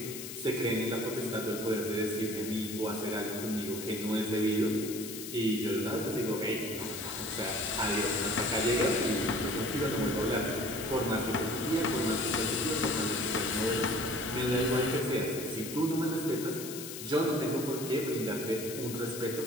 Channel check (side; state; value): left; noise; hiss, 9 dB below the sound